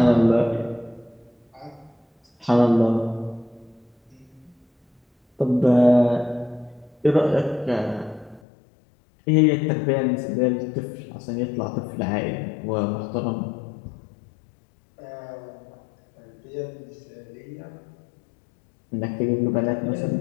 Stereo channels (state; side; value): drops out; right; at 8.4 s